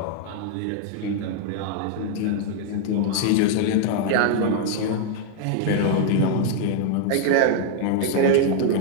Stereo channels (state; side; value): different; both; correlation 0.00